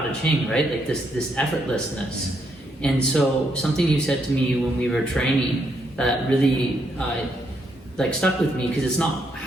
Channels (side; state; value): both; normal; correlation 0.76